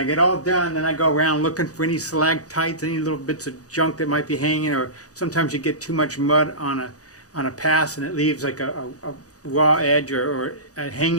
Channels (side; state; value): right; late; 0.67 ms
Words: get all done, then I go around looking for any stalactites, any little bits of junk that might be hanging, or sometimes you get too much mud on a pass and it leaves like a raw edge or a